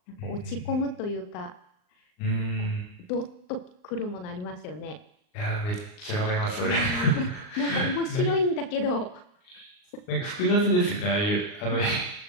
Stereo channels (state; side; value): late; right; 39 ms